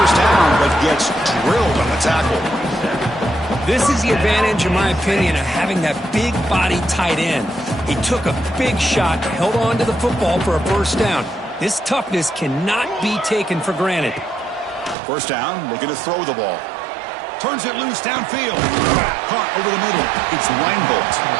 down, but gets drilled on the tackle. This is the advantage, in my opinion, of having that big body tight end. He took a big shot, held on to the football for a first down. This toughness cannot be taken for granted. First down, looking to throw the ball. Turns it loose downfield. Caught over the middle. It's Reinbolt.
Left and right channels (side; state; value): left; drops out; at 15.0 s